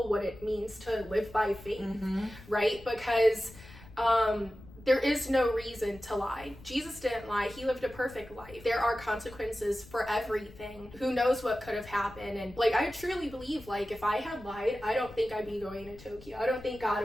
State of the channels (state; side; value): noise; left; rumble, 19 dB below the sound